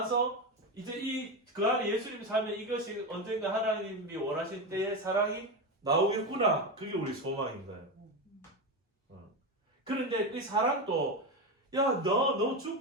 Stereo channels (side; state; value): both; normal; correlation 0.16